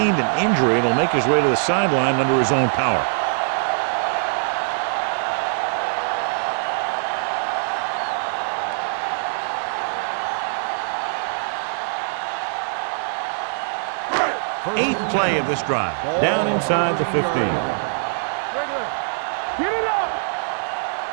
an injury and will make his way to the sideline under his own power. Eighth play of this drive. Down inside the 15. Get it up.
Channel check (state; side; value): silent; left; digital silence